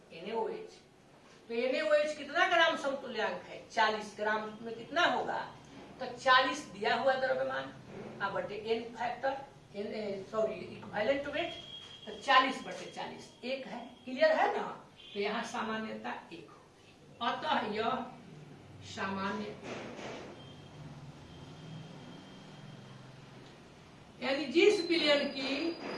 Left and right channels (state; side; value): identical; both; correlation 1.00